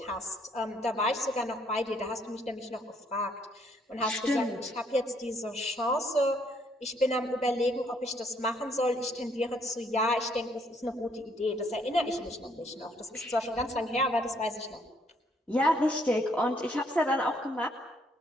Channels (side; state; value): both; normal; correlation 0.68